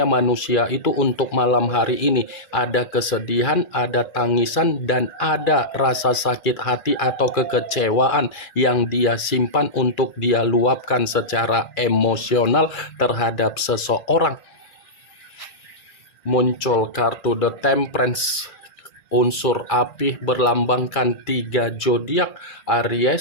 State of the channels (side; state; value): right; late; 2.3 ms